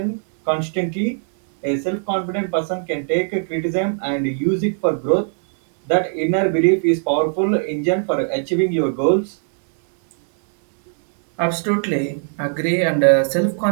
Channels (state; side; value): silent; left; digital silence